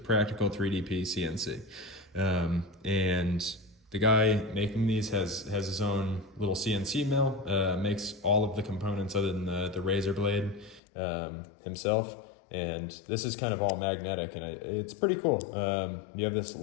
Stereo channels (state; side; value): drops out; right; at 10.8 s